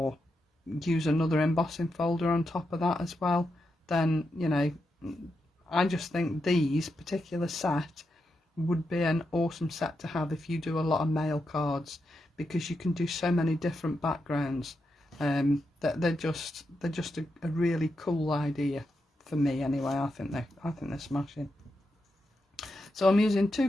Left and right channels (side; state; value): both; normal; correlation 0.85